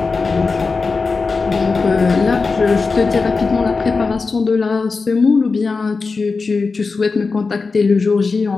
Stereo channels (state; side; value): quieter; right; 4.3 dB